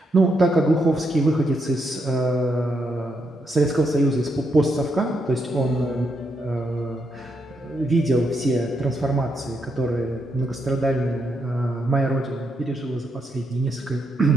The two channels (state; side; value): normal; both; correlation 0.80